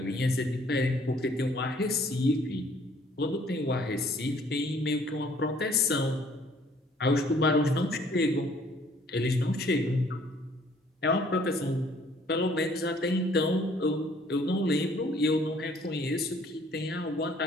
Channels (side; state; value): both; normal; correlation 0.60